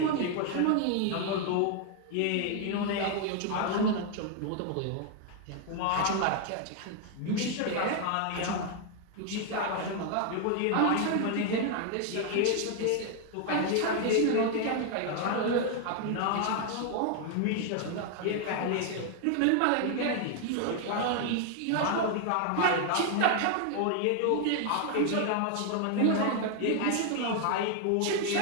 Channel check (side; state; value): both; different; correlation 0.00